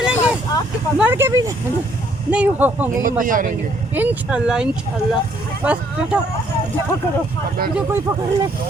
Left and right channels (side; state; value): both; normal; correlation 0.66